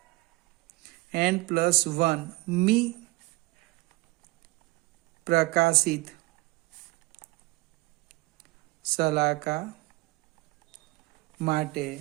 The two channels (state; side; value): quieter; left; 22.4 dB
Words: 1 મી પ્રકાશિત સલાકા માટે